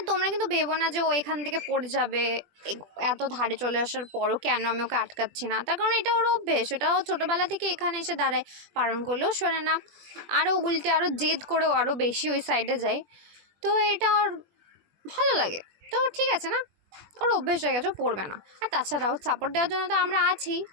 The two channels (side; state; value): left; late; 20 ms